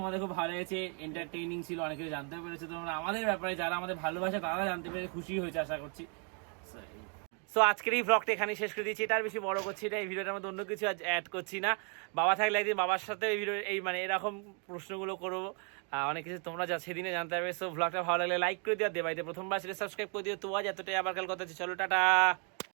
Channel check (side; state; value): left; quieter; 39.0 dB